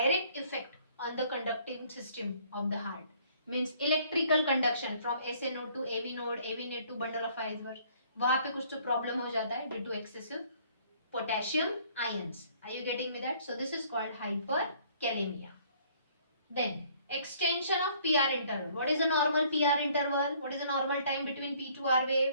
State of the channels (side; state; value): both; inverted; correlation -0.60